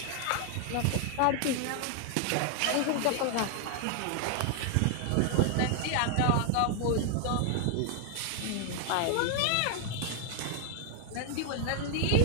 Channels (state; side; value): different; both; correlation 0.00